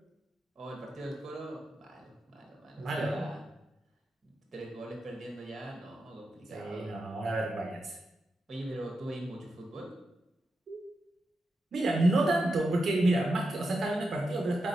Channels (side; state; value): both; normal; correlation 0.88